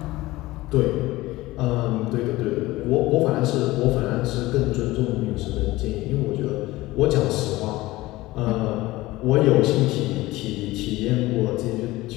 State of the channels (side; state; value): right; quieter; 18.7 dB